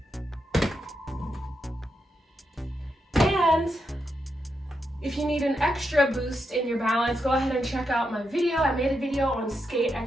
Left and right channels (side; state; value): both; normal; correlation 0.84